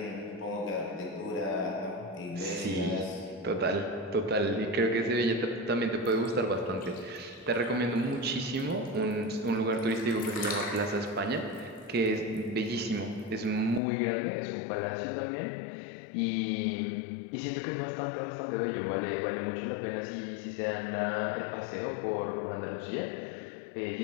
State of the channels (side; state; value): right; drops out; at 13.8 s